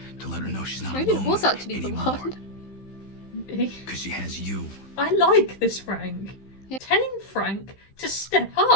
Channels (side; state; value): right; late; 15 ms